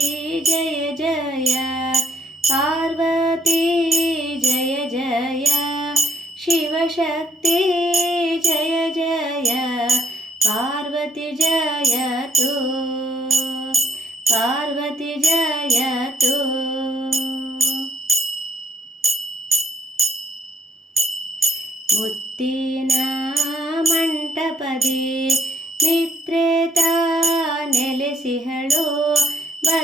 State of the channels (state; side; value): normal; both; correlation 0.67